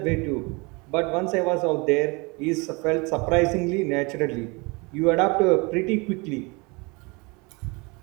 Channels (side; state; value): left; quieter; 28.1 dB